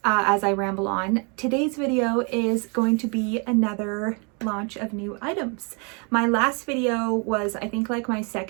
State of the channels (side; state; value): left; quieter; 34.4 dB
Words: as I ramble on, today's video is going to be another launch of new items. My last video was, I think, like my